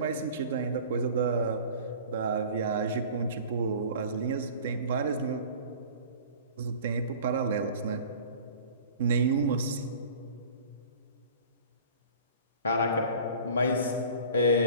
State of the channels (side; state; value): both; inverted; correlation -0.43